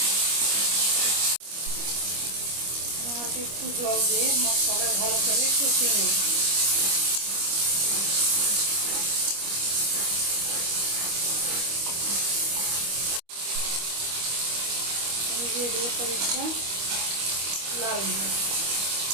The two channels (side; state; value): left; late; 25 ms